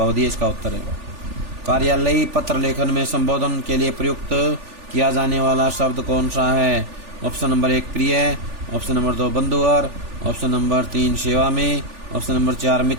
इसका उत्तर है। कार्यालयी पत्र लेखन में संबोधन के लिए प्रयुक्त किया जाने वाला शब्द कौन सा है? ऑप्शन नंबर 1 प्रिय, ऑप्शन नंबर 2 बंधुवर, ऑप्शन नंबर 3 सेवा में, ऑप्शन नंबर 4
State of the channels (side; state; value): left; late; 3.4 ms